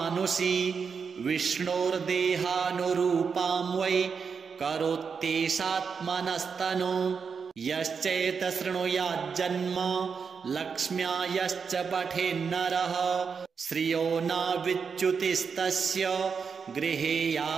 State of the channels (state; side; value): quieter; left; 5.9 dB